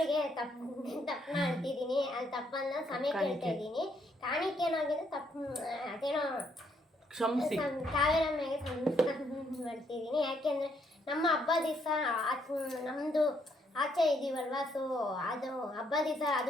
ತಪ್ಪನ್ನ ಅಂತಿದ್ದೀನಿ. ಅದು ತಪ್ಪನ್ನ ಸಮಯ ಕೇಳ್ತಾ ಇದ್ದೀನಿ. ಕಾಣಿಕೆ ಏನಾಗಿದೆ ಅದೇನೋ ಕಾವೇರ ಮೇಲೆ ಮಾಡ್ತಿದ್ದೀನಿ. ಯಾಕೆಂದರೆ ನಮ್ಮ ಹಬ್ಬ ದಿವಸ ನಮ್ಮದು ಆಚೆ ಇದ್ದೀವಲ್ವ. ಸೊ ಅದು ಹಬ್ಬ ದಿವಸ,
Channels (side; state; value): both; normal; correlation 0.72